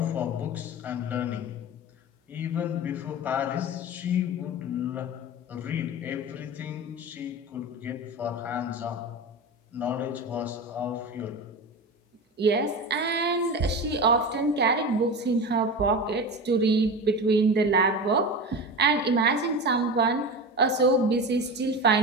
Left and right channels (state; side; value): normal; both; correlation 0.27